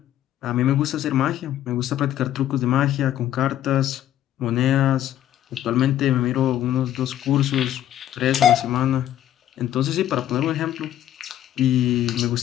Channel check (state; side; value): quieter; right; 11.9 dB